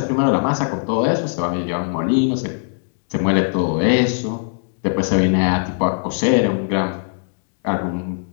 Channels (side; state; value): right; silent; digital silence